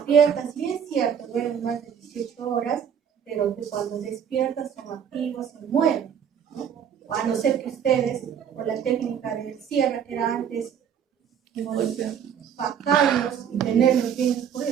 sí es cierto, duermen más de 18 horas, pero que cuando despiertan son activos, se mueven, ¿no? A no ser que ustedes, por la técnica del cierre que era antes, bajarlos y tenerlos bien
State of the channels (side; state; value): left; quieter; 8.2 dB